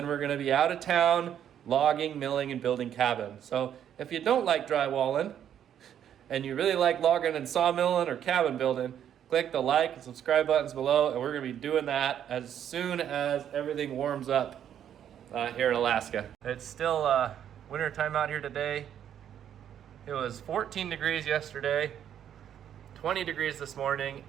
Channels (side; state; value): left; quieter; 9.7 dB